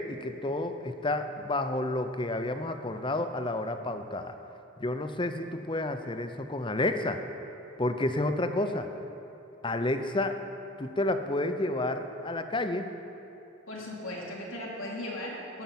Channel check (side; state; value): both; normal; correlation 0.43